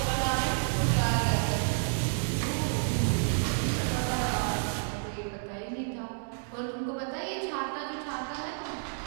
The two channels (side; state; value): left; silent; digital silence